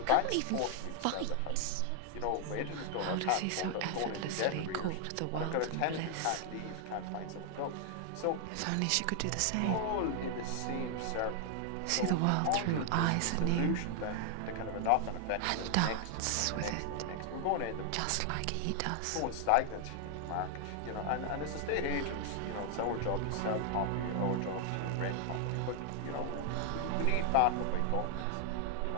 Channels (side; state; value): both; different; correlation 0.00